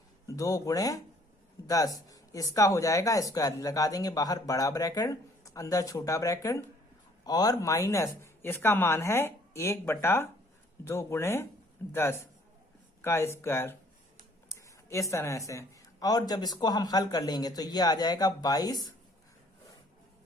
गुणे 10। इसका हो जाएगा स्क्वायर, लगा देंगे बाहर बड़ा ब्रैकेट, अंदर छोटा ब्रैकेट, और माइनस इसका मान है 1/2 गुणे 10 का स्क्वायर, इस तरह से। और जब इसको हम हल कर लेंगे तो ये आ जाएगा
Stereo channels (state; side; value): normal; both; correlation 0.59